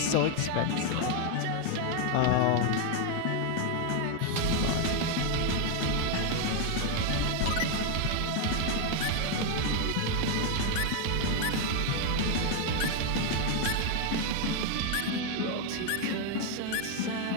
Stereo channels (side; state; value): both; different; correlation 0.01